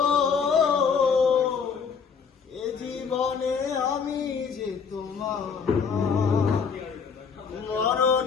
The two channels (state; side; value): quieter; right; 6.1 dB